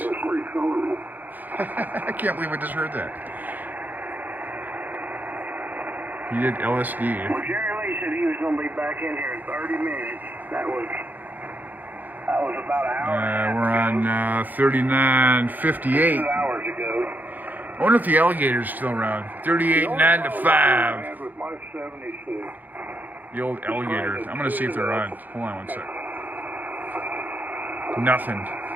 I can't believe I just heard that. He did LSD. Well, Jerry Lee said he was going to be back in here in 30 minutes. That was about an hour. We're on 39:58. 2 hours ago. I wonder if the alligator's still around. 38.9 to 5. With my 76. The old alligator. I'm going to see if they're on. Hold on one sec. Nothing.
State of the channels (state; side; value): late; left; 0.084 ms